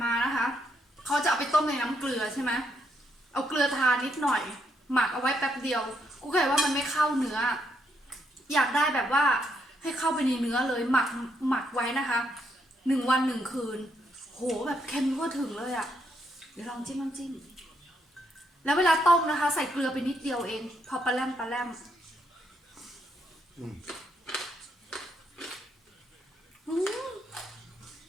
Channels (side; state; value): both; normal; correlation 0.76